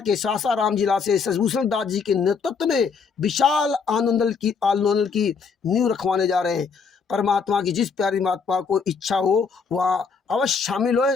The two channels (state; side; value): quieter; right; 5.5 dB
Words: सासाराम जिला से शशिभूषण दास जी के नेतृत्व में विशाल आंदोलन की नींव रखवाने जा रहे हैं। परमात्मा की जिस प्यारी महात्मा को इच्छा हो वह अवश्य शामिल हो,